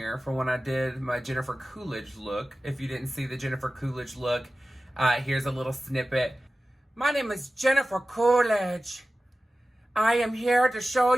for when I did my Jennifer Coolidge look. If you didn't see the Jennifer Coolidge look, here's a little snippet. My name is Jennifer Coolidge. I am here to show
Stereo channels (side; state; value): both; normal; correlation 0.96